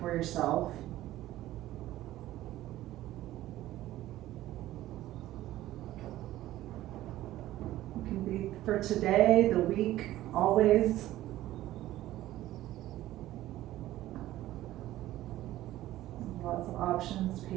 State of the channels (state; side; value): quieter; left; 14.9 dB